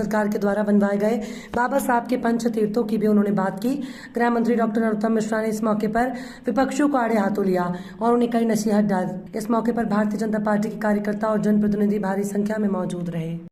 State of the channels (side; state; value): both; identical; correlation 1.00